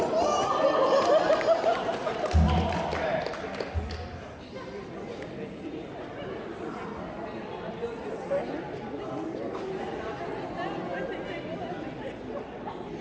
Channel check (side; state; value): both; identical; correlation 1.00